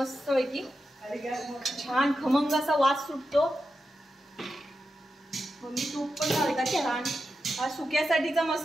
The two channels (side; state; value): both; normal; correlation 0.89